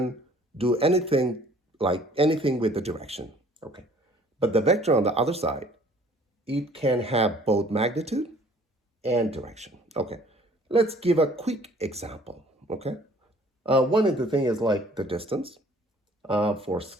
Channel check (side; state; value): both; normal; correlation 0.55